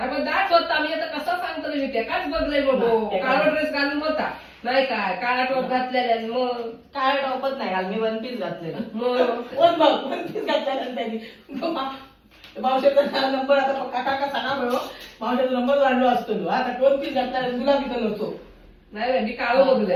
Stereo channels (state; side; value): identical; both; correlation 1.00